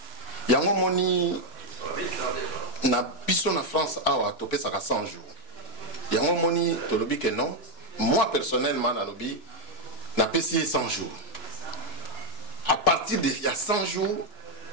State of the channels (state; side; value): late; right; 2.9 ms